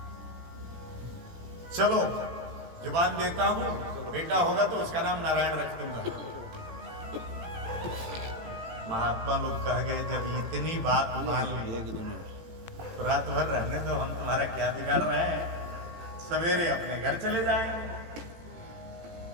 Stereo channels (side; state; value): left; late; 18 ms